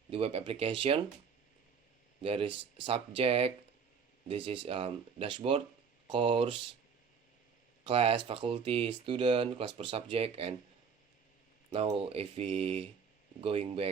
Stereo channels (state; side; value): quieter; left; 6.2 dB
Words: the web application. There is subject, this is dashboard, course, class, faculty, student, class per subject. And now if we going